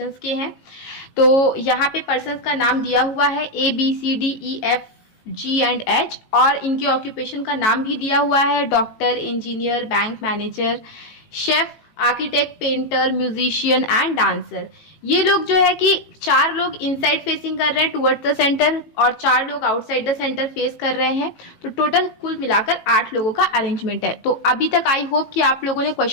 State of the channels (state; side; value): late; right; 18 ms